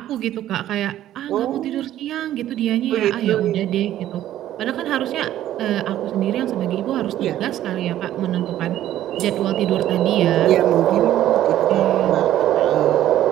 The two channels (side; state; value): left; quieter; 12.7 dB